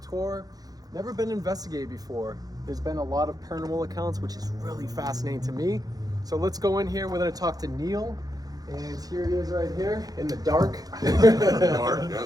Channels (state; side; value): late; left; 0.18 ms